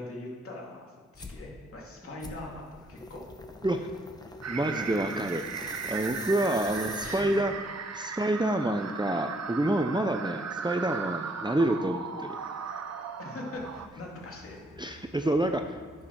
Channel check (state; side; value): normal; both; correlation 0.68